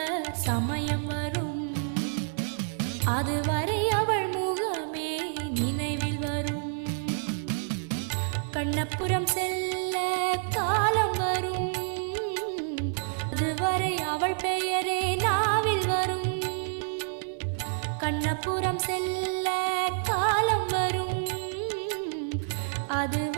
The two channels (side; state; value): left; silent; digital silence